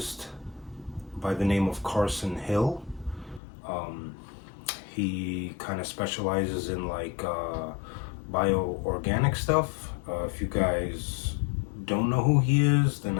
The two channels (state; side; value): drops out; right; at 3.4 s